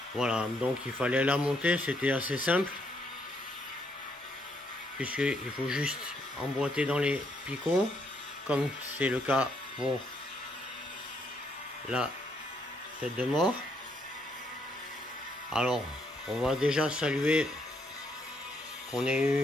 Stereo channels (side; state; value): both; normal; correlation 0.73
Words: Voilà, donc il fallait la monter, c'était assez simple. Puisqu'il faut juste emboîter dans les picots, comme c'est le cas pour la tête de mort. Alors, on va déjà saluer qu'on ait